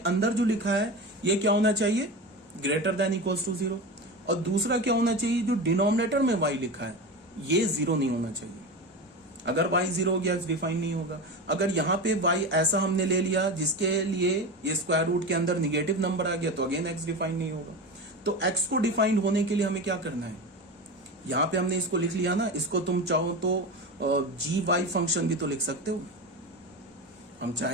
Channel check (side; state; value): both; normal; correlation 0.24